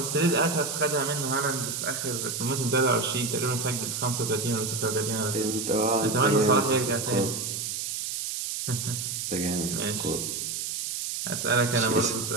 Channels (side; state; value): right; noise; hiss, 3 dB below the sound